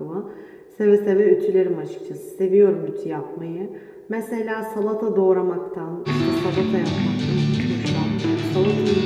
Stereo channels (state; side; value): identical; both; correlation 1.00